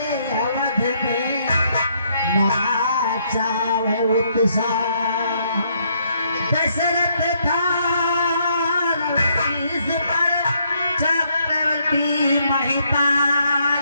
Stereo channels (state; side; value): inverted; both; correlation -0.72